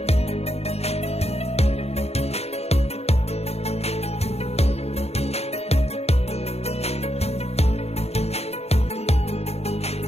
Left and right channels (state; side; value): late; right; 0.30 ms